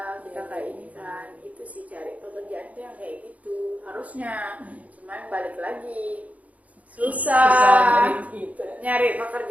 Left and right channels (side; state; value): left; late; 0.070 ms